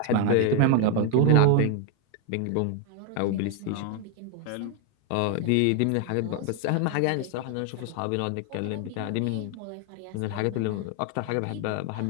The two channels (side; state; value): both; different; correlation 0.01